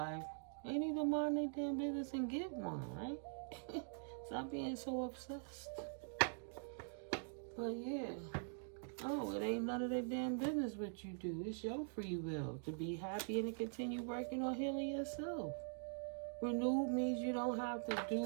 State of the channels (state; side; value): silent; left; digital silence